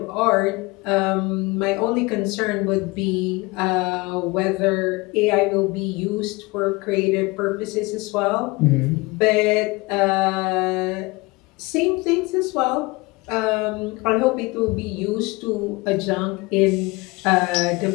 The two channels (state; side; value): quieter; right; 24.1 dB